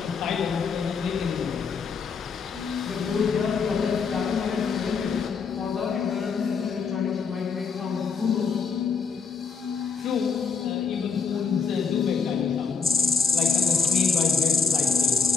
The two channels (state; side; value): quieter; right; 5.6 dB